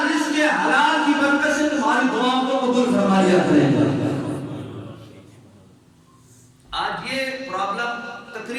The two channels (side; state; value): both; identical; correlation 1.00